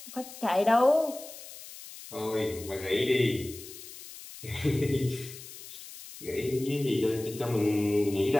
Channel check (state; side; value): noise; left; hiss, 15 dB below the sound